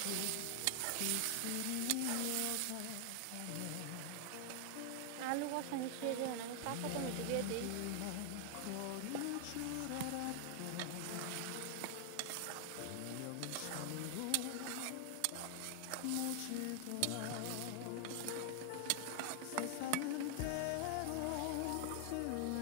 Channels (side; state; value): both; different; correlation 0.00